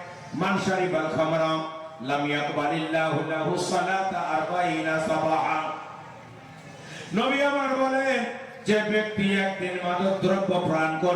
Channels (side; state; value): both; identical; correlation 1.00